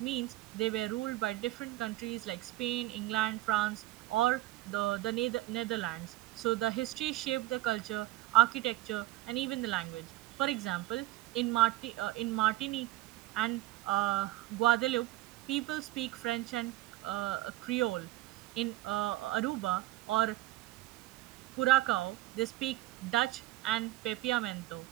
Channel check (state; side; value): quieter; left; 17.4 dB